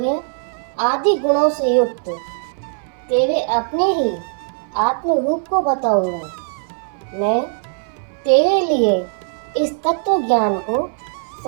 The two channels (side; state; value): left; silent; digital silence